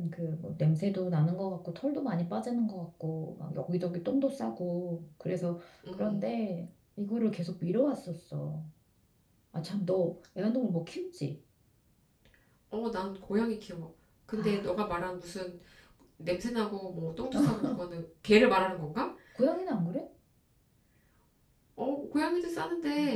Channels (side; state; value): both; identical; correlation 1.00